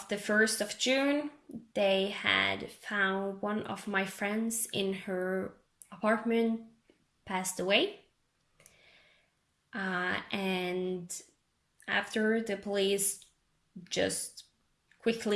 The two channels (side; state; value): both; identical; correlation 1.00